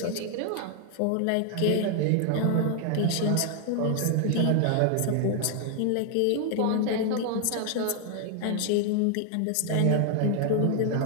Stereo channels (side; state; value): both; different; correlation 0.00